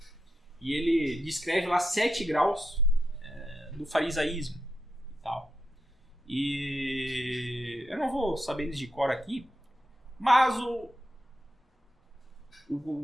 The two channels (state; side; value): normal; both; correlation 0.85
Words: E ele descreve lá 7 graus do farisaísmo e tal. E eu não vou saber eles de cor aqui, mas tipo